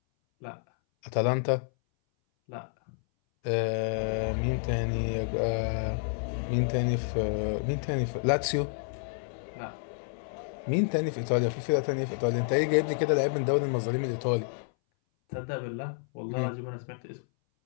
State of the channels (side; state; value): right; silent; 58 dB below the other